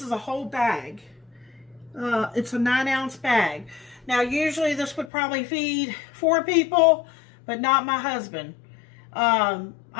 is a whole bag. It's a 9-ounce bag. Now, usually this would probably feed 4 people, but not my husband. I'm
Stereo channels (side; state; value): right; drops out; at 5.1 s